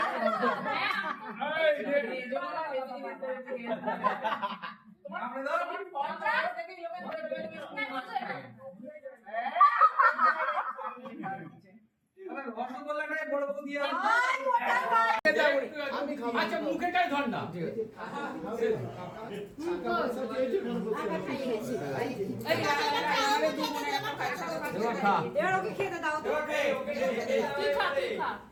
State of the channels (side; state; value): both; identical; correlation 1.00